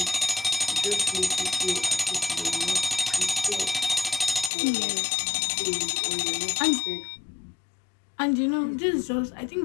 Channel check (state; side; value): drops out; right; at 4.5 s